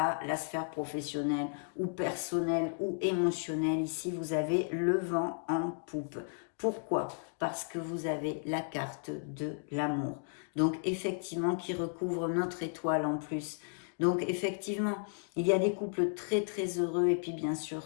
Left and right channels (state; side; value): silent; right; digital silence